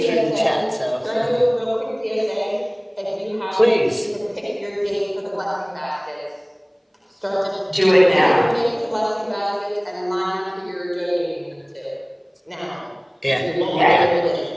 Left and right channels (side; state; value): both; identical; correlation 1.00